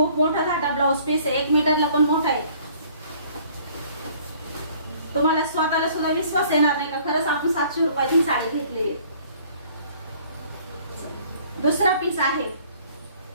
मोठा घाटा ब्लाउज पीस आहे, 1 मीटरला पण मोठा आहे. तुम्हाला स्वतःला सुद्धा विश्वास येणार नाही का खरंच आपण 700 रुपयाची साडी घेतली आहे. दुसरा पीस आहे,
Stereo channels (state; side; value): inverted; both; correlation -0.56